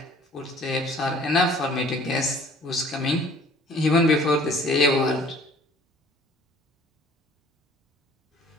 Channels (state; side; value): normal; both; correlation 0.52